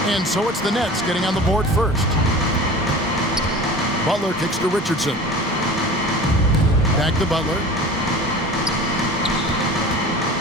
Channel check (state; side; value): normal; both; correlation 0.38